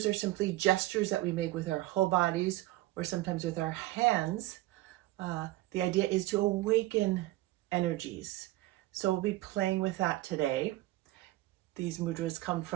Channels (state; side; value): quieter; left; 17.6 dB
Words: are simply gestures that we make with our whole bodies or sometimes with our hands. The idea is to awaken energies. So we'll be playing with that today. These mudras come